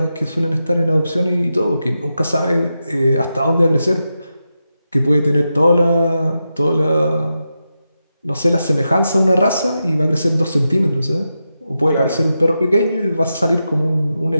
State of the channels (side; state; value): both; inverted; correlation -0.89